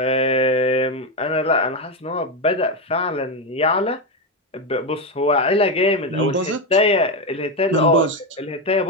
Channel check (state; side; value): normal; both; correlation 0.10